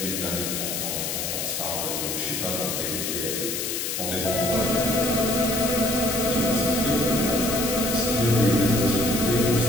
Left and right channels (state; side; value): noise; left; hiss, 2 dB below the sound